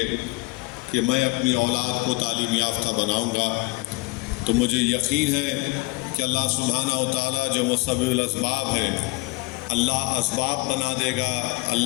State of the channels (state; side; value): quieter; right; 24.2 dB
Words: کہ میں اپنی اولاد کو تعلیم یافتہ بناؤں گا، تو مجھے یقین ہے کہ اللہ سبحانہ و تعالیٰ جو مسبب الاسباب ہے، اللہ اسباب بنا دے گا،